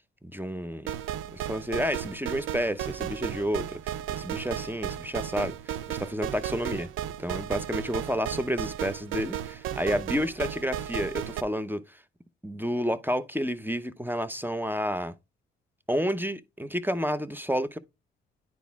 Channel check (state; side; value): normal; both; correlation 0.66